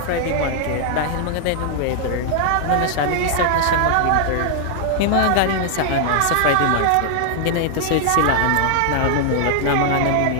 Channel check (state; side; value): different; both; correlation 0.00